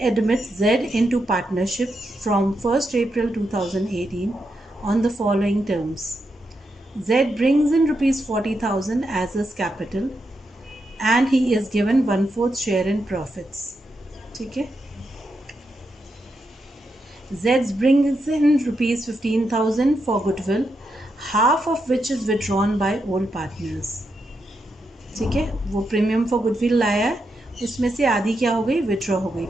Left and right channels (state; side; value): normal; both; correlation 0.84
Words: admit Z into partnership from 1st April 2018 on the following terms. Z brings in rupees 40,000 as his capital and he is given 1/4 share in profits. ठीक है. Z brings in rupees 15,000 for goodwill, half of which is withdrawn by old partners. ठीक है. वो प्रीमियम फॉर गुडविल लाया है, उसमें से आधी क्या हो गई? विड्रॉ हो गई